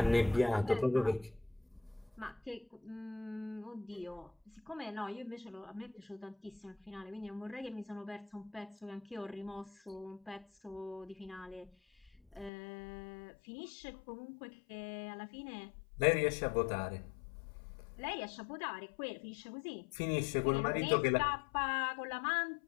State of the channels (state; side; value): drops out; right; at 12.5 s